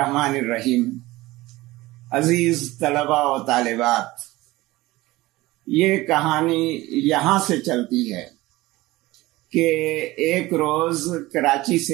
الرحیم۔ عزیز طلباء و طالبات، یہ کہانی یہاں سے چلتی ہے کہ ایک روز کراچی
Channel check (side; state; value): left; quieter; 19.2 dB